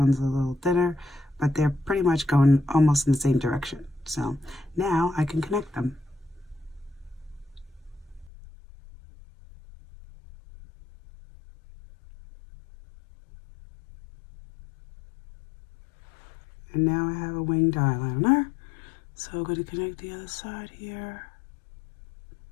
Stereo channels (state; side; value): drops out; right; at 8.3 s